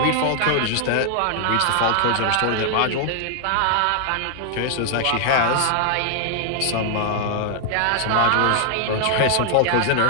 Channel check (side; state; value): both; different; correlation 0.00